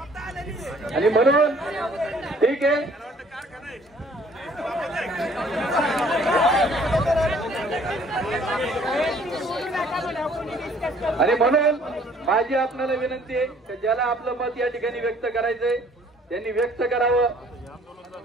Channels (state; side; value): normal; both; correlation 0.58